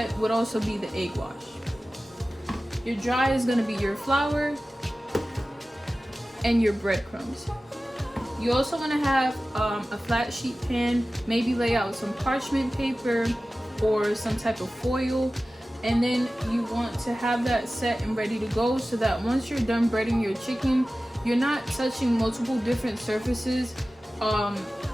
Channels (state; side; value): normal; both; correlation 0.96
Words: would also be the egg wash. Your dry is going to be your flour and your breadcrumbs. You also want to have a flat sheet pan, maybe lay out some parchment paper or some type of foil, and then you want to have that set and ready to go so that once you're done breading your chicken, you're not touching multiple different surfaces